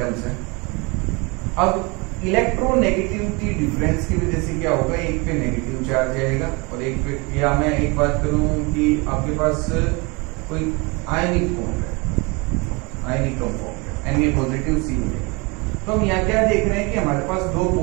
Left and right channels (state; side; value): quieter; left; 28.0 dB